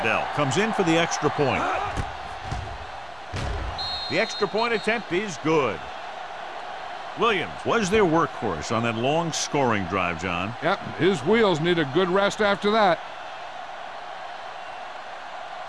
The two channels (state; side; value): identical; both; correlation 1.00